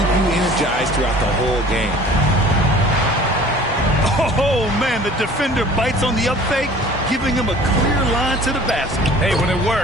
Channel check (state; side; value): normal; both; correlation 0.48